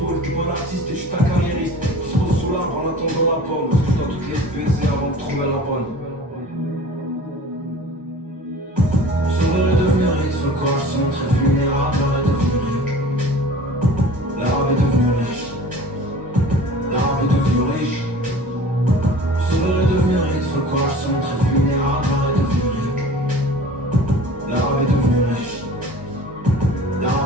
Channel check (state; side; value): normal; both; correlation 0.43